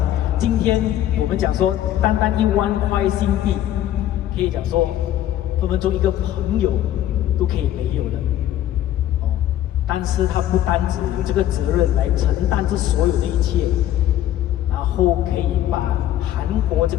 今天我们讲说，单单1万块新币，可以讲说，分分钟一个朋友都可以没有的，哦。但是他不单只有这个责任来承担这所有的一切，然后可以把韩国这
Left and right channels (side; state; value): right; quieter; 12.4 dB